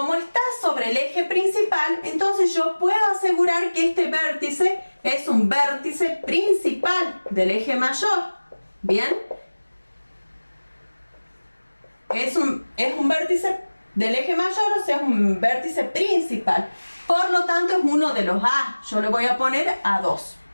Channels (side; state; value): both; inverted; correlation -1.00